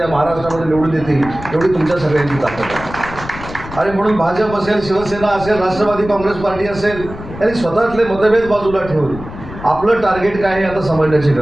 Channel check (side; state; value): left; noise; rumble, 13 dB below the sound